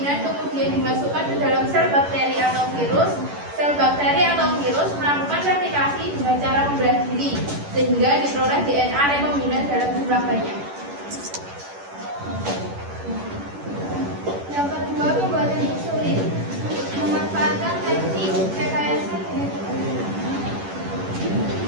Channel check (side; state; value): left; late; 11 ms